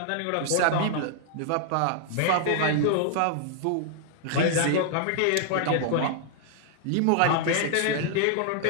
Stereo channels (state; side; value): different; both; correlation -0.01